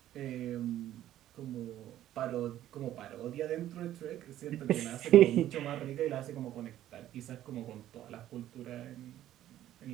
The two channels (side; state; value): left; quieter; 12.7 dB